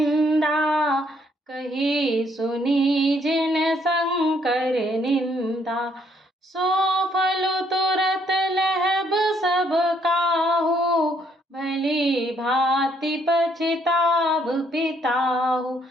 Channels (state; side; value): normal; both; correlation 0.69